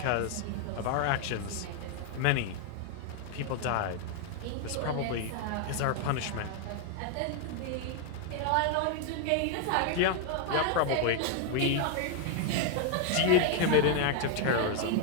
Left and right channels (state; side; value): different; both; correlation 0.00